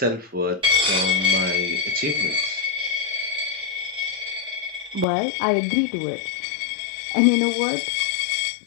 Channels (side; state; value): right; drops out; at 5.1 s